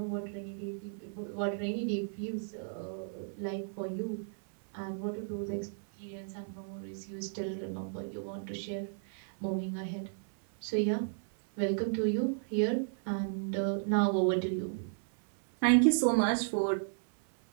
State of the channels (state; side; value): silent; left; 55 dB below the other